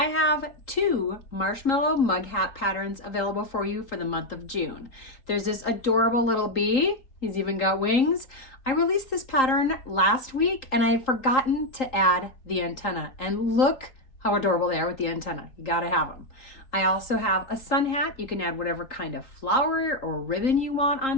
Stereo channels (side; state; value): right; late; 3.8 ms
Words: have 2 marshmallow mug hat patterns available for you for the month of June. There's this adorable little bee. He's even got wings. I released this pattern last week and I had forgotten to add the antenna. And look how adorable they are with the antenna. You gotta have them. I also have a sun hat. You can add whatever kind of flower or ribbon you want